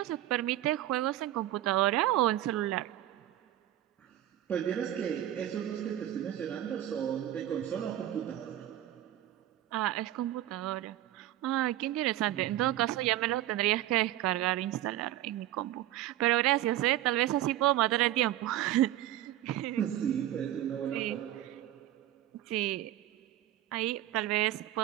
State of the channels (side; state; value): left; quieter; 13.6 dB